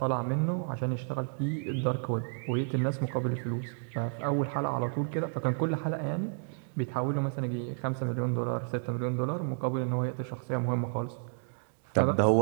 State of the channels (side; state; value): left; silent; 57 dB below the other